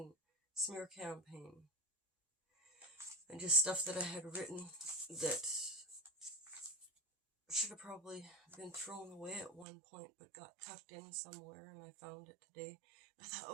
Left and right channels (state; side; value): drops out; left; at 9.7 s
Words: smear campaign. And just stuff that I had written that should have probably been thrown away at one point, but got tucked in somewhere, and I found it today. I thought,